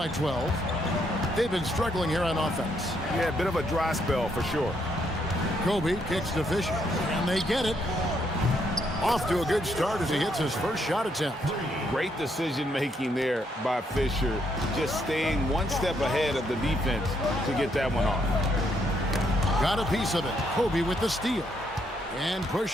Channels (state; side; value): normal; both; correlation 0.74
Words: 12. They've been struggling here on offense. Yeah, a bit of a dry spell for sure. Kobe kicks to Fisher, and they get it. Off to a good start as he hits his first shot attempt. Great decision-making there by Fisher, just staying one step ahead of the defense to get that one off. Got a piece of it. Kobe with the steal. And